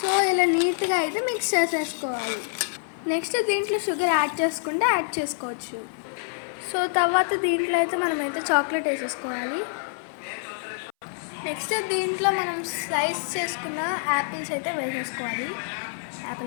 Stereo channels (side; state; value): right; silent; 61 dB below the other